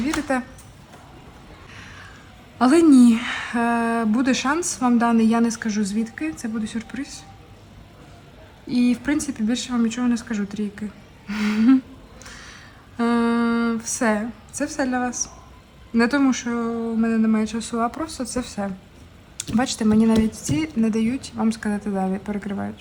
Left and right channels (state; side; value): identical; both; correlation 1.00